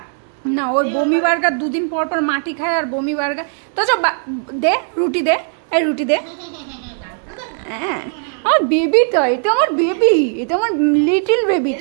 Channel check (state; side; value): silent; left; 59 dB below the other